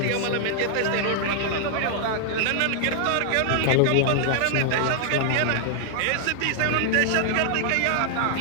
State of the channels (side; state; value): both; different; correlation -0.01